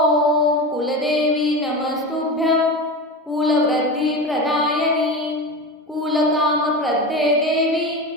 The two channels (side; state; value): both; normal; correlation 0.25